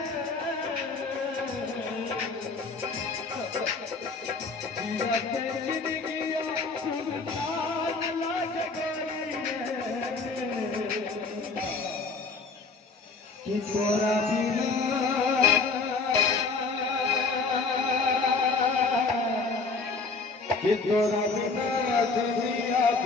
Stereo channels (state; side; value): quieter; right; 4.3 dB